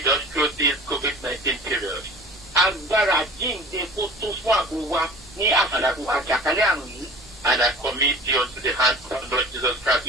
us through this COVID-19 period. Agbára jíǹde kó tó fún ààbò wa ní àsìkò àjàkálẹ̀ àrùn yìí. And I commit you unto the hand of Lord Jesus Christ,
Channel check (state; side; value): normal; both; correlation 0.42